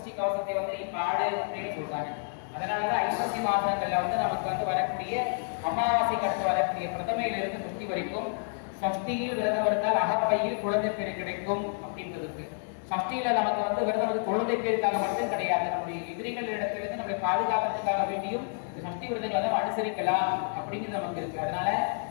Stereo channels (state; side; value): silent; right; digital silence